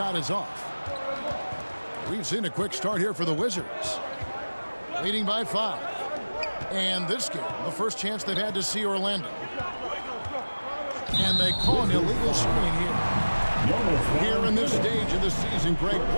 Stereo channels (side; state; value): both; inverted; correlation -1.00